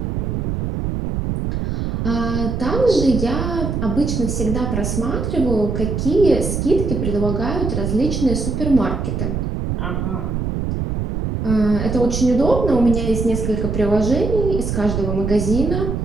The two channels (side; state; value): right; noise; rumble, 2 dB below the sound